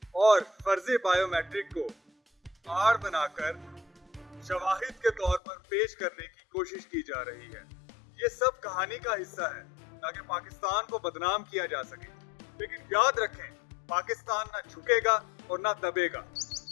और फर्जी बायोमेट्रिक को आड़ बनाकर शवाहिद के तौर पर पेश करने की कोशिश की जा रही है। ये सब कहानी का हिस्सा है ताकि पाकिस्तान को बदनाम किया जा सके। लेकिन याद रखें, पाकिस्तान ना झुकेगा और ना दबेगा।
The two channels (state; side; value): drops out; right; at 5.4 s